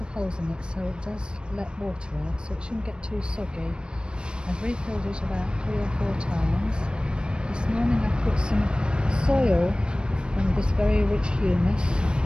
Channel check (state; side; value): late; left; 0.053 ms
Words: holes in it so it does let water out, so it shouldn't get too soggy. I've refilled it about 3 or 4 times. This morning I put some soil from this very rich humus